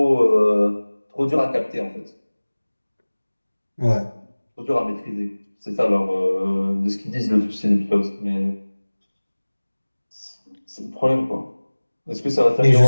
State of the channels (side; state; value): both; inverted; correlation -1.00